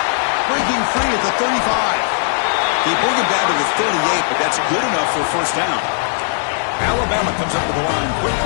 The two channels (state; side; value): silent; right; digital silence